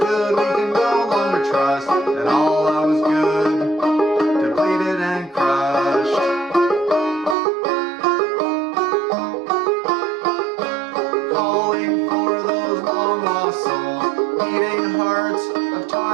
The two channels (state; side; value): drops out; left; at 7.4 s